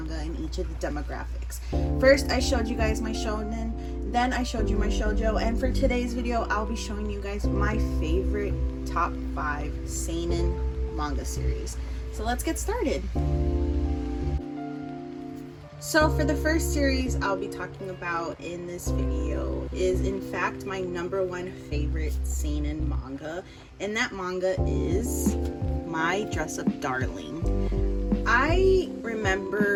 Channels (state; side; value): identical; both; correlation 1.00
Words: in each of the demographics. First, I showed you guys my shonen, then I showed you my shoujo, and for today's video, I'll be showing you guys my favorite top 5 seinen manga series. So let's get started. So for the first series I'll be talking about in this video is in fact my #1 favorite seinen manga, and that manga is My DressUp Darling. I